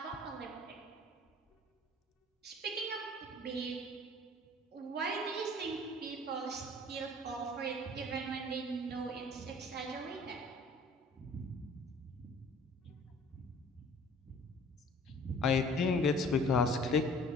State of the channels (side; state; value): both; normal; correlation 0.50